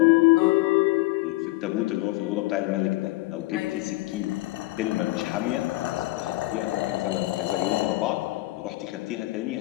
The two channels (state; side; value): quieter; right; 20.2 dB